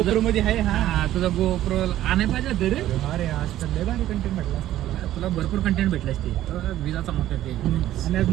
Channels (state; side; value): quieter; left; 13.4 dB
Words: मध्ये आहे. हा तुझा गोप्रो आणाय पाहिजे होतं रे. अरे आज तर लय भारी कंटेंट भेटला असता मला. तुला भरपूर कंटेंट भेटला असते. विजाचा मोठा ते. आणि आज